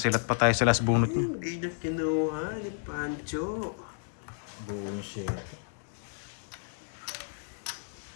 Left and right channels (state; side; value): silent; right; 57 dB below the other